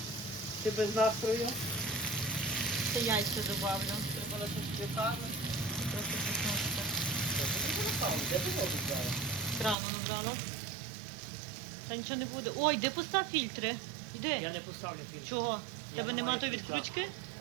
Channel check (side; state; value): left; drops out; at 9.8 s